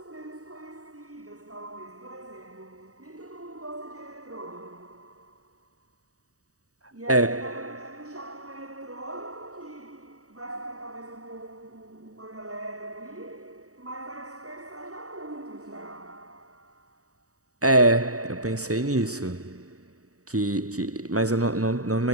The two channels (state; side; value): late; left; 0.66 ms